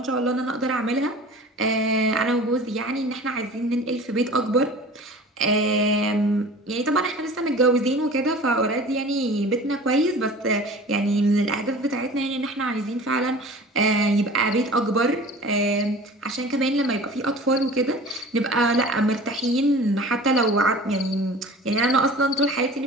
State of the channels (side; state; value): both; normal; correlation 0.41